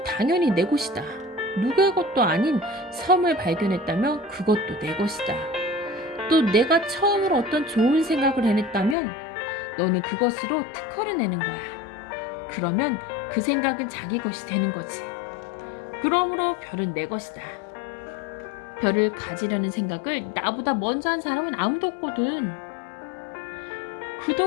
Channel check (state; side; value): drops out; right; at 9.0 s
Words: 당연히 내 것이다. 누구의 것도 아닌 섬을 발견했다면 그것도 내 것이다. 또 내가 처음으로 어떤 좋은 생각을 해냈다면 너는 그것으로 특허를 내는 거야. 그러면 그 생각은 자기 것이 되는 거지. 그러므로 별은 내 것이다. 별을 가지려는 생각을 나보다 먼저 한 사람은 아무도 없거든.